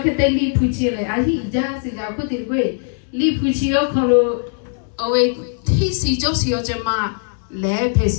Kate Lipuchile, I just put it away. Lipuchio Kolo, away, Tisi Josio Jama, Le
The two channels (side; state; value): right; silent; 66 dB below the other